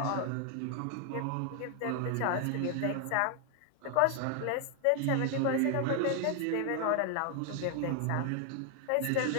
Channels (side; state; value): both; different; correlation 0.00